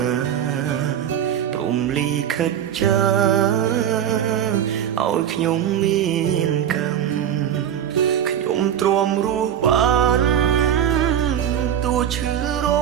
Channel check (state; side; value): quieter; left; 9.6 dB